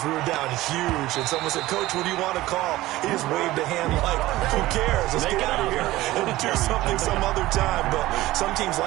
We were down huge, and someone said, "Coach, what do you want to call?" He just waved a hand like, "Who cares? Let's get out of here and do something some other time." But some teams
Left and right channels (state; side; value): quieter; left; 17.2 dB